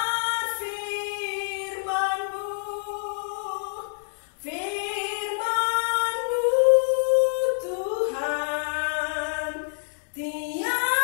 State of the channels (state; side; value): silent; right; 61 dB below the other